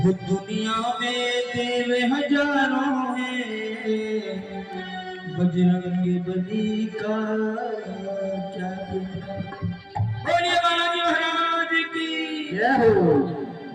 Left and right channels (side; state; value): both; identical; correlation 1.00